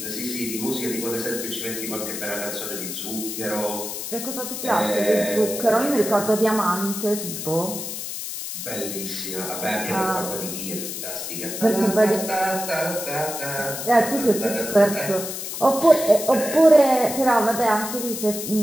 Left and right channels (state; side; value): noise; left; hiss, 6 dB below the sound